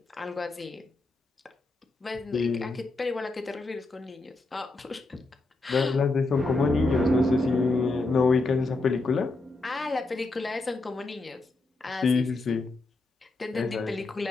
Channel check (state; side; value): quieter; right; 3.2 dB